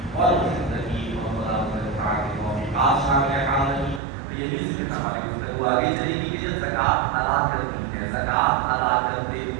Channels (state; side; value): drops out; left; at 4.0 s